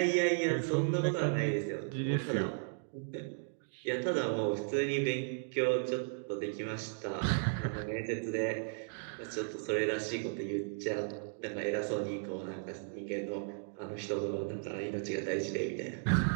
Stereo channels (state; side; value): silent; left; digital silence